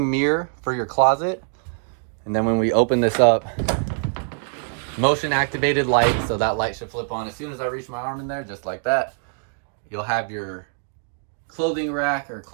mirror for your closet. And then when we open this up, motion activated light. So that light should flip on as soon as I reach my arm in there, just like that. You'll have your clothing rack or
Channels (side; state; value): left; silent; digital silence